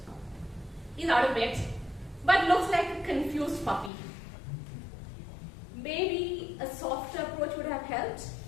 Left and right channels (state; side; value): drops out; right; at 3.9 s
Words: He's out of bed, but looks like a confused puppy. Maybe a softer approach would have helped.